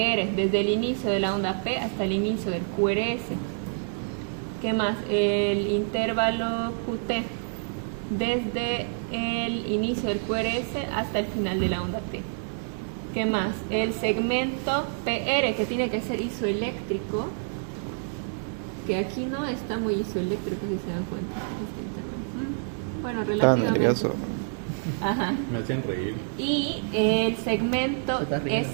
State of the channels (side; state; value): left; silent; digital silence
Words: desde el inicio de la onda P hasta el inicio del QRS. ¿Qué más? El intervalo QT, desde el inicio del QRS hasta el final de la onda T. ¿Qué más? El segmento PR, que tiene que ser isoeléctrico, que aquí no está muy isoeléctrico, si se dan cuenta. Bueno, relativamente. nervioso. Ajá. Me hacen reír. Y el segmento